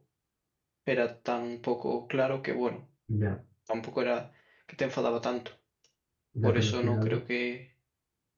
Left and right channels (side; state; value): both; identical; correlation 1.00